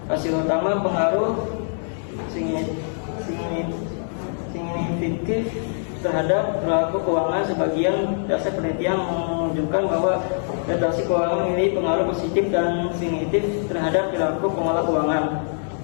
Hasil utama pengaruh signifikan terhadap perilaku keuangan. Sebagian dasar penelitian menunjukkan bahwa literasi keuangan memiliki pengaruh positif dan signifikan terhadap perilaku pengelola keuangan.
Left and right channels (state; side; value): silent; right; digital silence